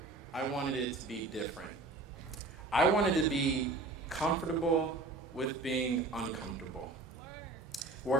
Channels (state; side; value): quieter; left; 3.2 dB